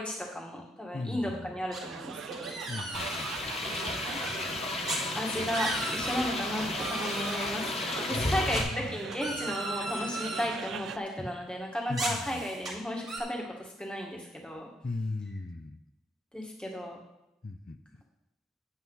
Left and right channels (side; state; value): both; normal; correlation 0.70